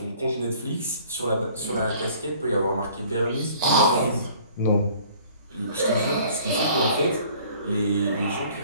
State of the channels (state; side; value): inverted; both; correlation -0.54